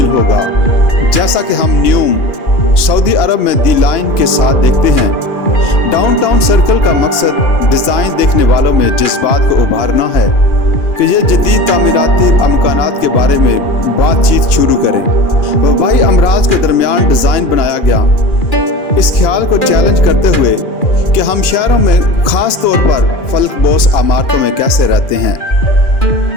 होगा, जैसा कि हम न्यूम सऊदी अरब में दी लाइन के साथ देखते हैं। डाउनटाउन सर्कल का मकसद डिज़ाइन देखने वालों में जज्बात को उभारना है कि ये जदीद तामीराती अमकानात के बारे में बातचीत शुरू करें। वबाई अमराज के दरमियान डिज़ाइन बनाया गया इस ख्याल को चैलेंज करते हुए कि हम शहरों में ख़ास तौर पर फलकबोस इमारतों में कैसे रहते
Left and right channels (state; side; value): late; right; 2.9 ms